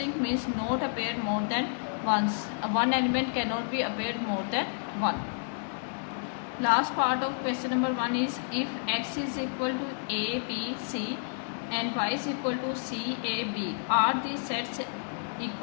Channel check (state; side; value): silent; right; digital silence